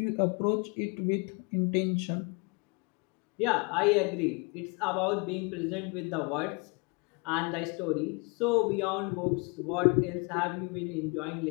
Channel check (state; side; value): quieter; right; 31.2 dB